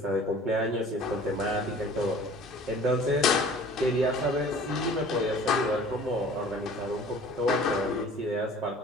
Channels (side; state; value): both; normal; correlation 0.47